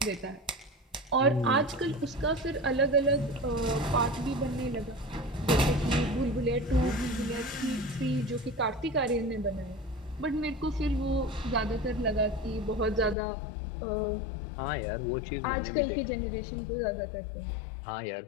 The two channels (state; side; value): drops out; right; at 13.2 s